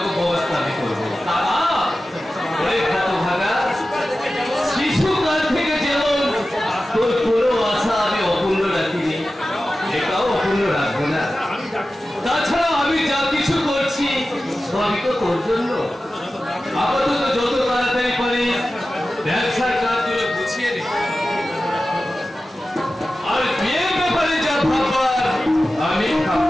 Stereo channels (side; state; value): both; normal; correlation 0.94